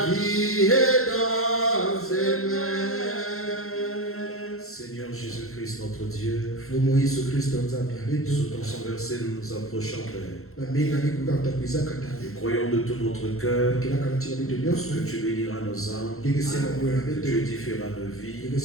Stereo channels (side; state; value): right; late; 0.62 ms